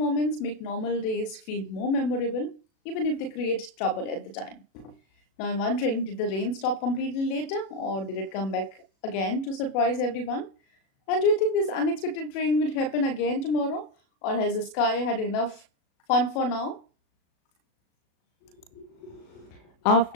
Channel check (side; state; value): right; late; 37 ms